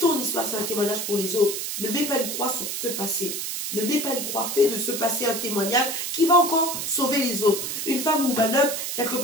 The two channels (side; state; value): right; noise; hiss, 4 dB below the sound